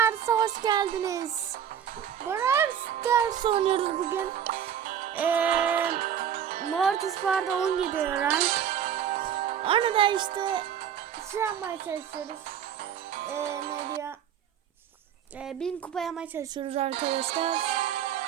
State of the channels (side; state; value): left; quieter; 9.0 dB